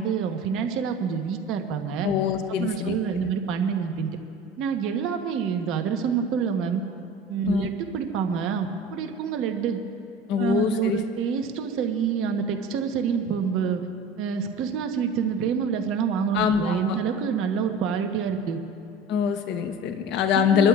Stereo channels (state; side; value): normal; both; correlation 0.37